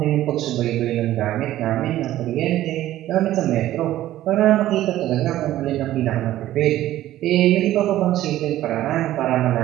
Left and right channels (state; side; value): quieter; left; 14.0 dB